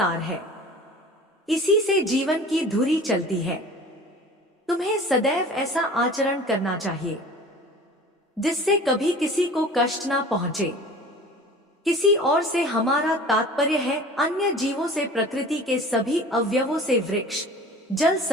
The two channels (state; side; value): normal; both; correlation 0.42